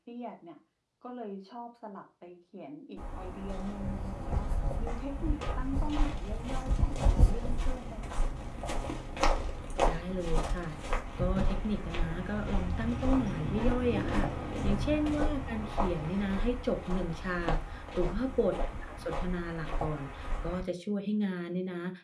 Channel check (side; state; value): both; identical; correlation 1.00